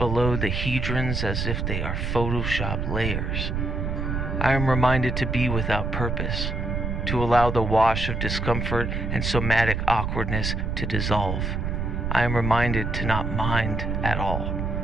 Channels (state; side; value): noise; right; rumble, 1 dB below the sound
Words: the hedrons as if they are Photoshop layers. I am reminded to be without purpose, to allow the wash of discomfort and somatic awkwardness to dissolve. I am reminded to not mind at all.